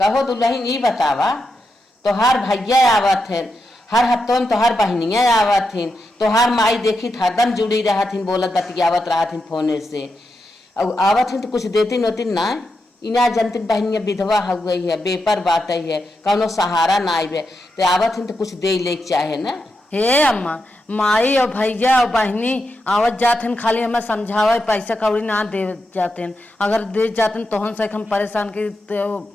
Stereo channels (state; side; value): normal; both; correlation 0.86